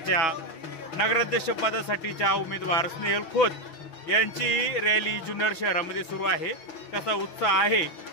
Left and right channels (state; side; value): late; right; 6.1 ms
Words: नगराध्यक्ष पदासाठीच्या उमेदवार स्नेहल खोत यांची रॅली जुन्नर शहरामध्ये सुरू आहे। कसा उत्साह आहे